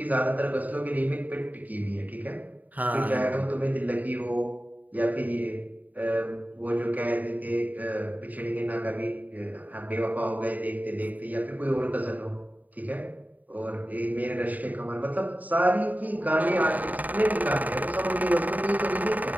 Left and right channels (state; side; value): late; left; 0.078 ms